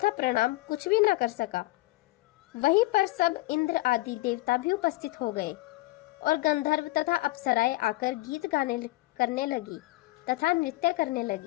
प्रणाम कुछ भी न कर सका। वहीं पर सब इंद्र आदि देवता भी उपस्थित हो गए और गंधर्व तथा अप्सराएं आकर गीत गाने करने लगी तथा नृत्य करने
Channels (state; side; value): quieter; right; 19.6 dB